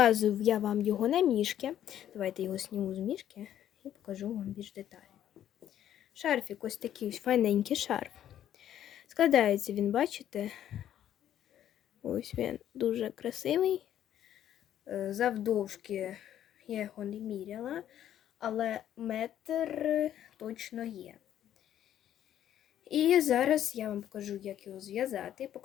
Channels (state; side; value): quieter; right; 11.0 dB